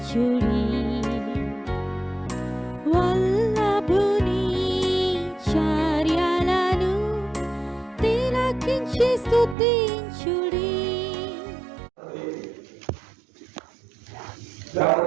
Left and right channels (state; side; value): drops out; left; at 9.6 s